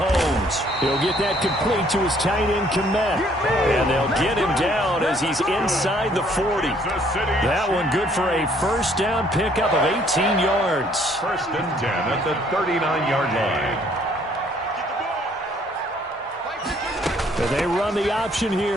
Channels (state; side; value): normal; both; correlation 0.63